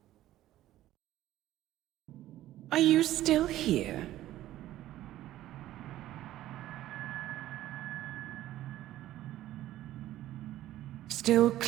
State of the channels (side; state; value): left; quieter; 14.2 dB